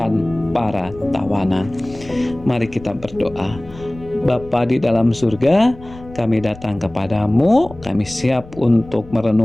para tawanan. Mari kita berdoa. Bapa di dalam surga, kami datang kepadamu, kami siap untuk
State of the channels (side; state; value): left; noise; rumble, 18 dB below the sound